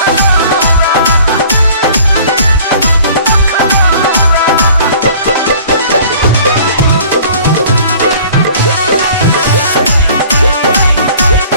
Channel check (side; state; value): both; inverted; correlation -0.50